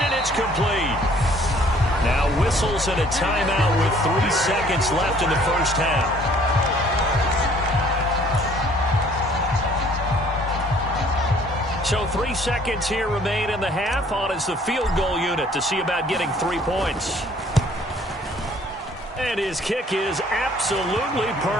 and it's complete. Now whistles and a timeout with 3 seconds left in the first half. So 3 seconds here remain in the half. On is the field goal unit to see about getting 3 points. And his kick is absolutely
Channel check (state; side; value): normal; both; correlation 0.58